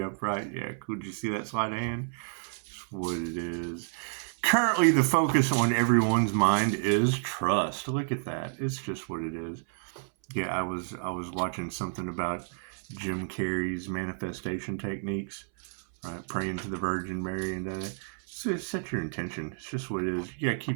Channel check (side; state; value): left; silent; 58 dB below the other